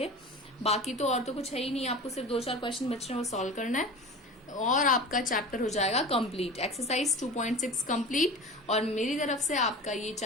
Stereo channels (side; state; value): both; normal; correlation 0.34